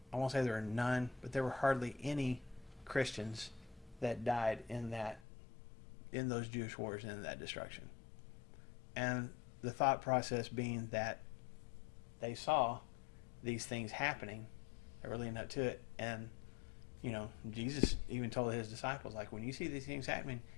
I won't say there were none, but there were hardly any Christians that died in those Jewish wars and in that destruction. And the thought process being that they saw these things happening that were leading up to it. And, Jesus even told his disciples, like, when you see these things happening,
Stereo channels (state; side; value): drops out; right; at 5.2 s